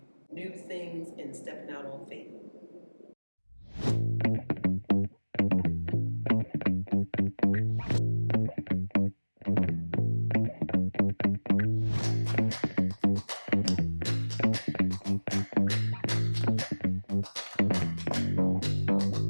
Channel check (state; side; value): inverted; both; correlation -1.00